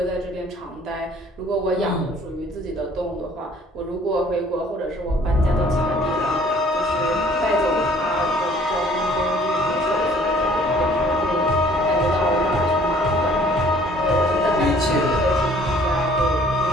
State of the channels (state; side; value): normal; both; correlation 0.56